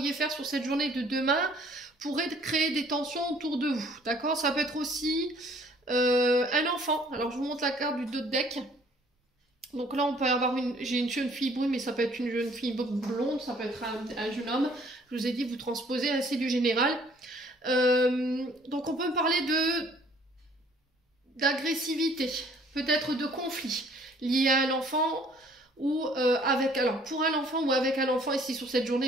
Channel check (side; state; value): both; normal; correlation 0.58